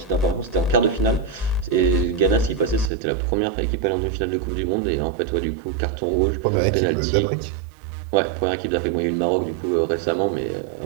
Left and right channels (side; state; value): left; drops out; at 2.9 s